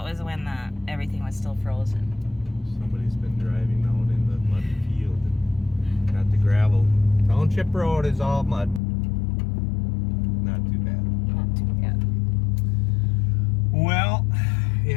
was when everything was still frozen? somebody's been driving out in the muddy field and got the gravel. Township Road is all mud. Not too bad. Not too bad. Well,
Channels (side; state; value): right; drops out; at 8.8 s